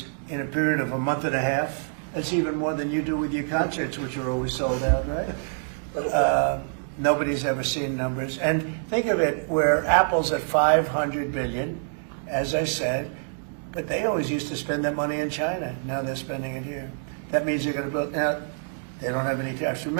a period of a month and a half, that's even more than you do with your concerts, which are always sold out, right? Nobody's ever seen numbers. And think of it, where Apple's at $500 billion, as I said, but they always used to spend that money in China. Now they're spending it here. That means they're going to build. Now, they don't have any tariffs.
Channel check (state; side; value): silent; left; digital silence